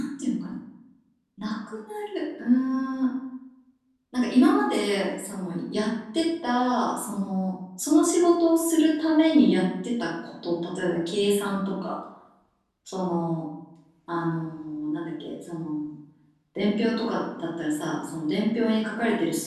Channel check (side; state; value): both; identical; correlation 1.00